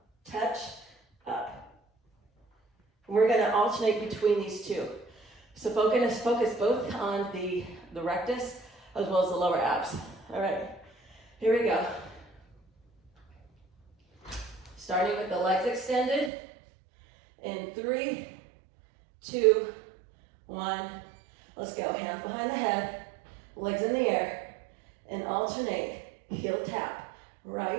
Touch, up. We're gonna alternate between these two. So focus both on the rectus as well as the lower abs. All right, here we go. Starting with the legs extended. In 3, 2, 1. Let's go. Hands behind the head, legs in the air, and alternate. Heel tap,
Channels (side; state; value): left; drops out; at 16.3 s